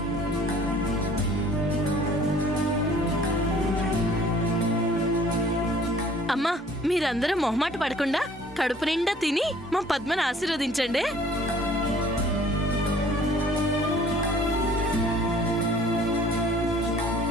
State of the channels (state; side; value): normal; both; correlation 0.54